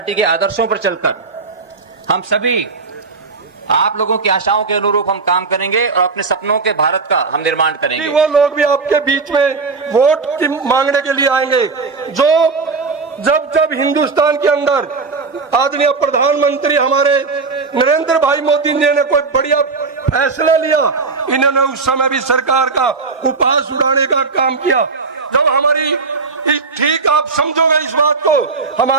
के आदर्शों पर चलकर हम सभी आप लोगों की आशाओं के अनुरूप हम काम करेंगे और अपने सपनों के भारत का हम निर्माण करेंगे। वो लोग भी आपके बीच में वोट की मांगने के लिए आएंगे जो जब हिंदुस्तान के अंदर आदरणीय प्रधानमंत्री हमारे नरेंद्र भाई मोदी जी ने कोई बढ़िया फैसला लिया, इन्होंने उस समय भी सरकार का उपहास उड़ाने का काम किया। जब हमारी ठीक आप समझोगे इस बात को,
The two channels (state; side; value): quieter; left; 4.4 dB